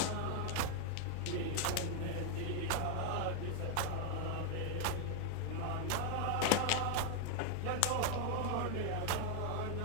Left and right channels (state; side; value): different; both; correlation 0.00